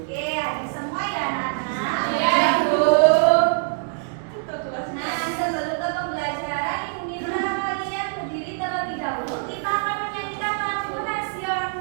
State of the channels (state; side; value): silent; left; digital silence